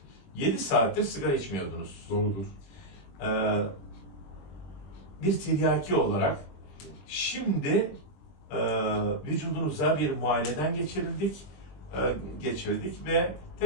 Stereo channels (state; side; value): late; right; 22 ms